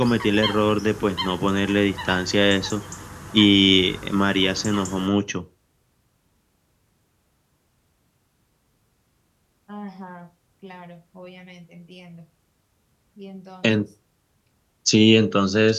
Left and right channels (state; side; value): identical; both; correlation 1.00